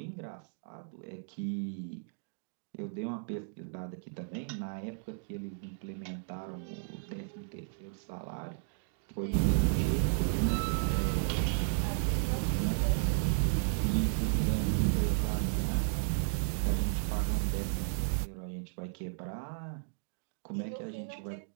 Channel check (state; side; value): silent; left; digital silence